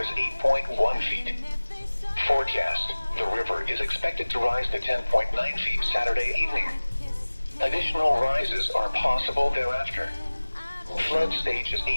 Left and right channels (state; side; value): inverted; both; correlation -1.00